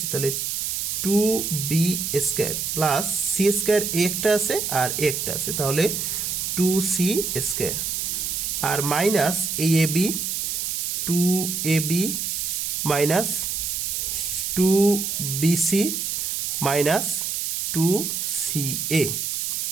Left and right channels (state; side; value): noise; right; hiss, 1 dB below the sound